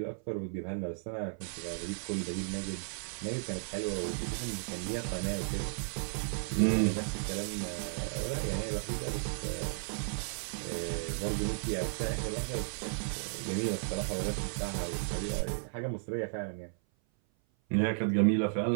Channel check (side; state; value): left; silent; 55 dB below the other